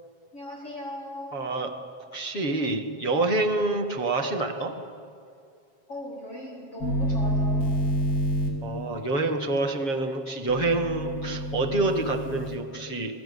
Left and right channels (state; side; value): late; right; 7.4 ms